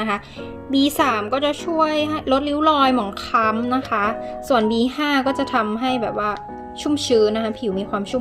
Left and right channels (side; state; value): both; identical; correlation 1.00